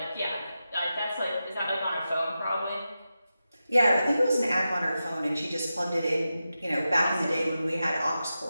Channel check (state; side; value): inverted; both; correlation -0.91